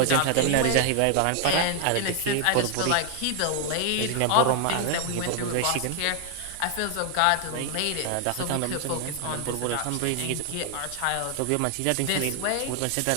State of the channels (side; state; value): both; different; correlation 0.00